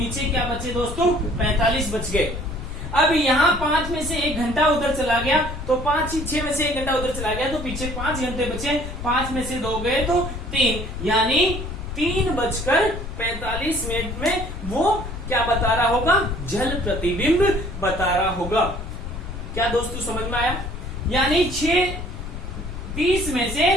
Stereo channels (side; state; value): left; noise; rumble, 7 dB below the sound